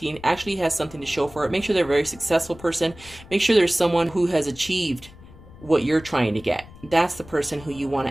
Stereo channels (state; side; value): noise; left; rumble, 20 dB below the sound